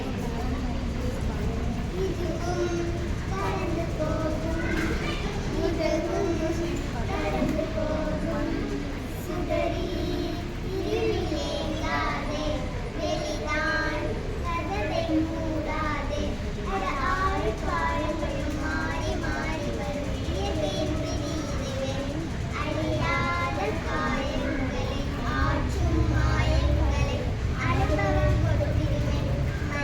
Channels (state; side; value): identical; both; correlation 1.00